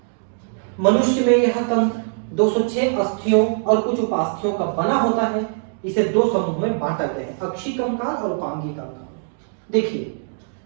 मनुष्य में यह तंत्र 206 अस्थियों और कुछ उपास्थियों का बना होता है। इसे दो समूह में बांटा गया है, अक्षीय कंकाल और उपांगी कंकाल। देखिए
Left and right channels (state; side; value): silent; left; digital silence